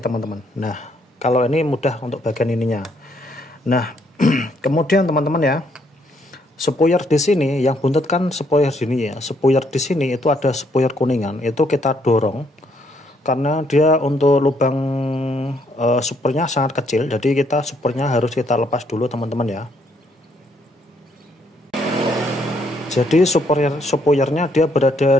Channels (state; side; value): normal; both; correlation 0.71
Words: teman-teman. Nah, kalau ini mudah untuk bagian ininya. Nah, kemudian teman-teman ya, spoiler di sini yang buntut kan spoiler sini ya. Spoiler di sini itu ada spoiler kuningan, itu kita dorong. Karena dia untuk lubang supernya sangat kecil, jadi kita supernya harus kita lepas dulu teman-teman ya. Jadi spoilernya dia berada